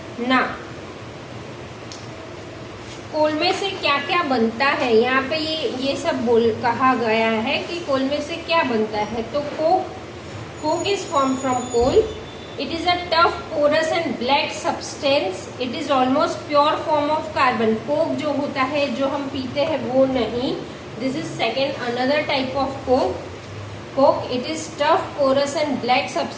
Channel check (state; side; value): identical; both; correlation 1.00